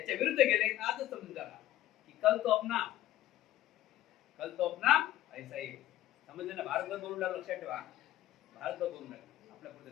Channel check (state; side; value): quieter; right; 14.1 dB